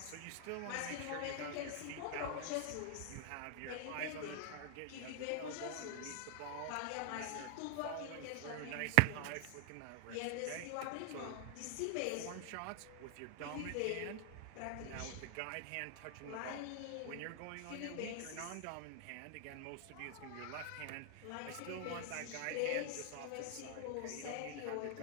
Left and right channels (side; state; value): both; different; correlation 0.00